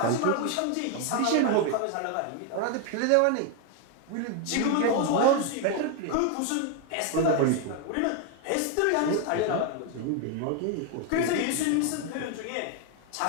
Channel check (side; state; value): both; different; correlation 0.01